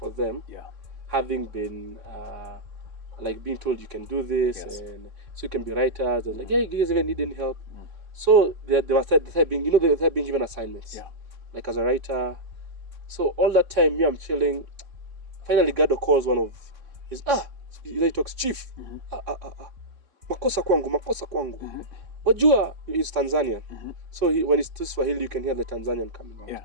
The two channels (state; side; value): late; left; 3.7 ms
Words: them. Yeah. Having been like being told you can do this, and so you can be writers. And like, yeah, you guys even need any help. So they started being, they started being given assignments. Yeah. Like as a writer. So all that time, me, I'm chilling. Finally, Gado calls one of his he talks, chief. Makosa kwangu. Wajua, he's Tanzanian. So when he speaks Swahili, you can hear the Tanzanian coming out. Yeah.